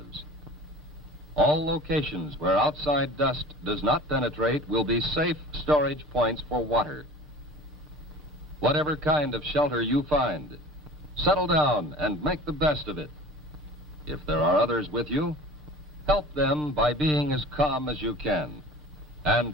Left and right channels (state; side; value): normal; both; correlation 0.41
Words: All locations where outside dust does not penetrate will be safe storage points for water. Whatever kind of shelter you find, settle down and make the best of it. If there are others with you, help them by being as calm as you can,